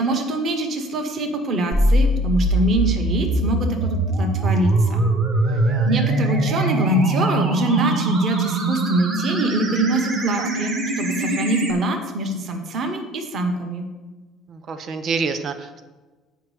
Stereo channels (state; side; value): normal; both; correlation 0.48